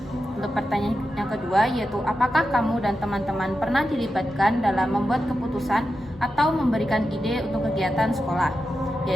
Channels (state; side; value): normal; both; correlation 0.90